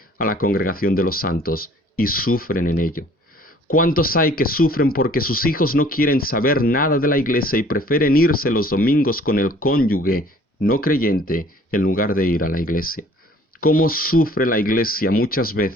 a la congregación de los santos y sufren en ello? ¿Cuántos hay que sufren porque sus hijos no quieren saber nada de la iglesia y prefieren irse los domingos con el cónyuge no creyente en lugar de ir a la iglesia? ¿Cómo sufre la iglesia muchas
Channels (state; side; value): normal; both; correlation 0.54